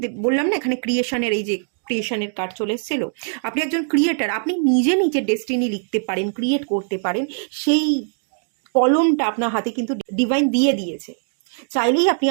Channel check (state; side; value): silent; left; 65 dB below the other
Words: বললাম না, এখানে ক্রিয়েশনের এই যে ক্রিয়েশনের কার্ড চলে এসেছিল, আপনি একজন ক্রিয়েটার, আপনি নিজে নিজের ডেস্টিনি লিখতে পারেন, ক্রিয়েট করতে পারেন। সেই কলমটা আপনার হাতে কিন্তু ডিভাইন দিয়ে দিয়েছে। চাইলেই আপনি